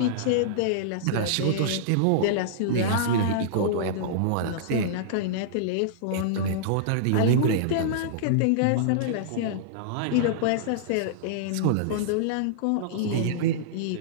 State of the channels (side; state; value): both; different; correlation -0.02